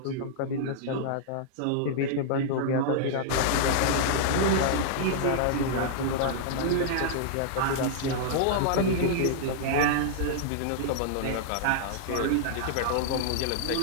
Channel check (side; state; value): both; different; correlation -0.01